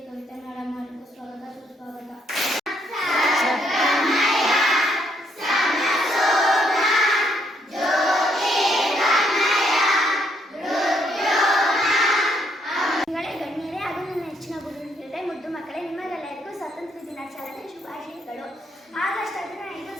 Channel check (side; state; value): both; normal; correlation 0.72